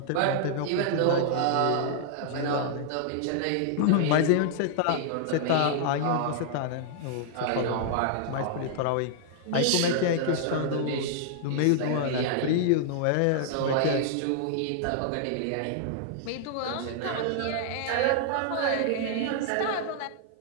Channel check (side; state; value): both; different; correlation -0.01